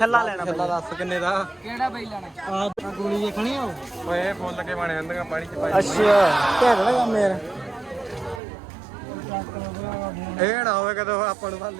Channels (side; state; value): left; drops out; at 8.4 s